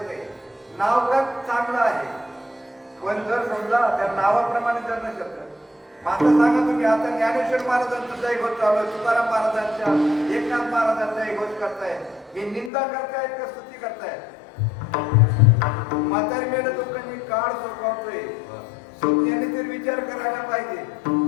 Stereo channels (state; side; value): drops out; right; at 12.7 s